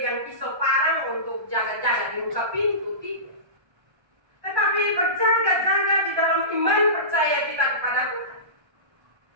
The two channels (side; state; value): left; late; 1.3 ms